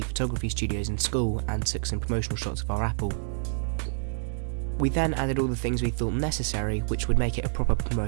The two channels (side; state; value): left; silent; 60 dB below the other